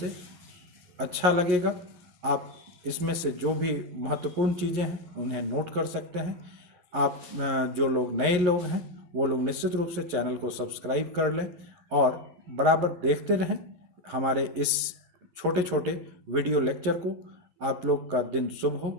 अच्छा लगेगा। आप इसमें से जो भी महत्वपूर्ण चीज़ें हैं उन्हें नोट कर सकते हैं। आप जो लोग नए लोग हैं वो लोग निश्चित रूप से चैनल को सब्सक्राइब कर लें और बराबर देखते रहें हमारे इस छोटे छोटे वीडियो लेक्चर को। आप लोग का दिन शुभ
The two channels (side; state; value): left; late; 11 ms